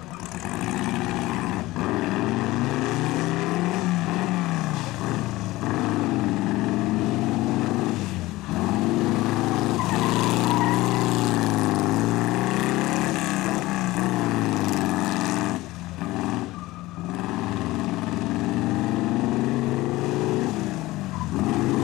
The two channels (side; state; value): right; quieter; 18.7 dB